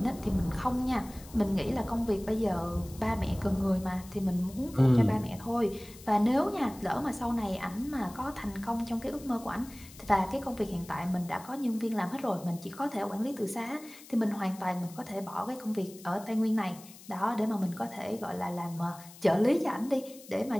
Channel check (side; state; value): left; noise; hiss, 19 dB below the sound